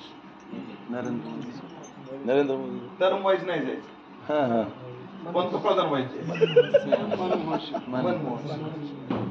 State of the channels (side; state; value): both; identical; correlation 1.00